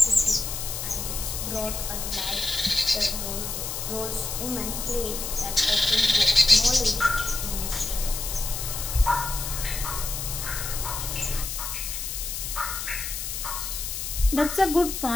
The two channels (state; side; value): noise; left; hiss, 5 dB below the sound